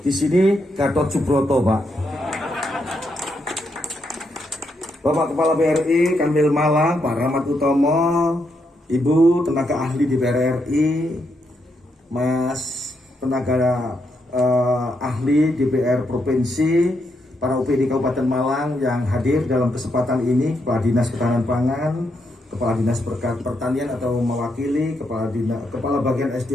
di sini Gatot Subroto, Pak. Bapak Kepala BRI Kanwil Malang, Pak Rahmat Utomo, Ibu tenaga ahli di BRI, Mas tenaga ahli DPR Provinsi, para UPD Kabupaten Malang yang hadir dalam kesempatan ini, Kepala Dinas Ketahanan Pangan, Kepala Dinas Pertanian atau mewakili Kepala Bagian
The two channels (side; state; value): both; normal; correlation 0.80